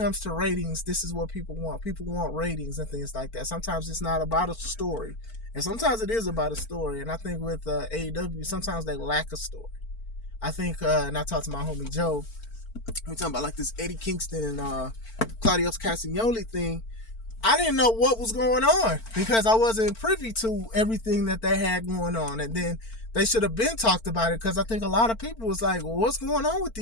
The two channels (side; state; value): right; late; 4.4 ms